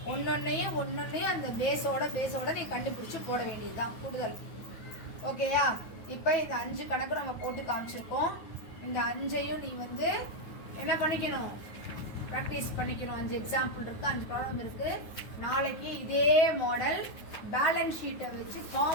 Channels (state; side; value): late; right; 9.4 ms